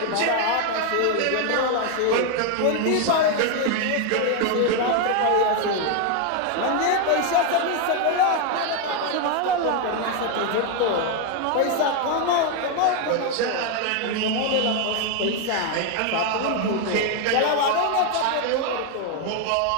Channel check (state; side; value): different; both; correlation 0.01